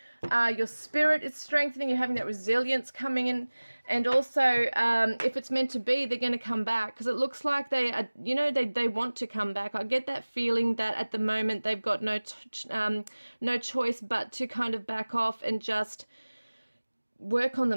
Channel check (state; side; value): inverted; both; correlation -1.00